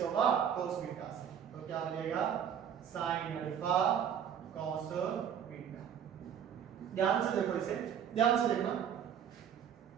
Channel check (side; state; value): left; quieter; 8.6 dB